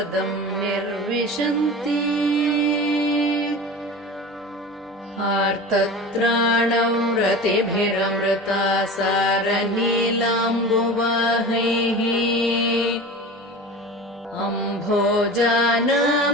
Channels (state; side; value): normal; both; correlation 0.34